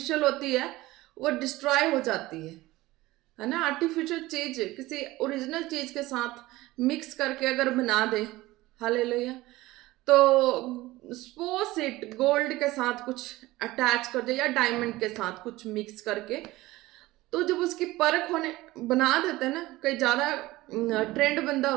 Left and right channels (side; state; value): left; quieter; 18.5 dB